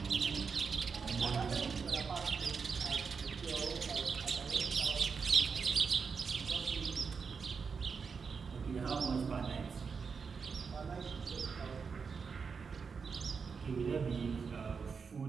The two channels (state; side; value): quieter; left; 5.5 dB